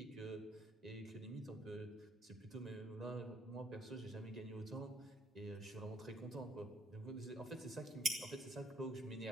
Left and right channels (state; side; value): normal; both; correlation 0.66